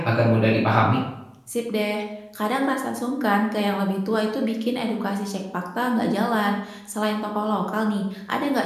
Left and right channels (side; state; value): both; identical; correlation 1.00